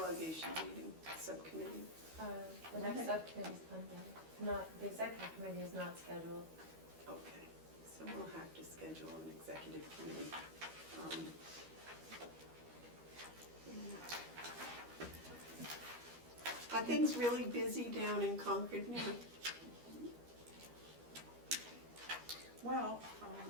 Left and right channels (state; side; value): late; left; 13 ms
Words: meeting, subcommittee? The next subcommittee is Monday. Not, the executive committee is not scheduled. Okay, so we'll have to schedule an executive committee. things really busy down in Concord now? Well,